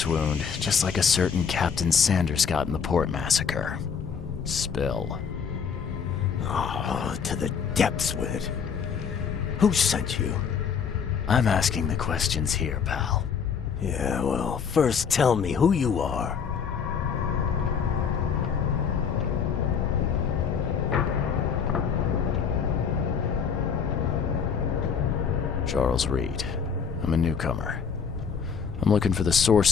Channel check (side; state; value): right; quieter; 6.6 dB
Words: wound, just like a certain Captain Sanders got in the port massacre. Spill. Oh, to the depths with it. Who sent you? I'm asking the questions here, pal. Yeah, well, first tell me who you are. Charles Reed. I'm a newcomer. I'm looking for the